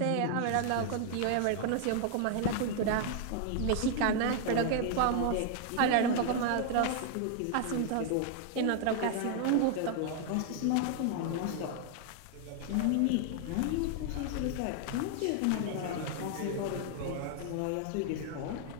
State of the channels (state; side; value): different; both; correlation 0.00